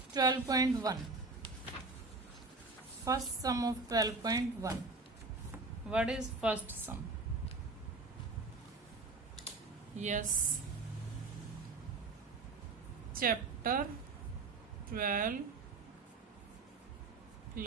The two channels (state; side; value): quieter; left; 3.7 dB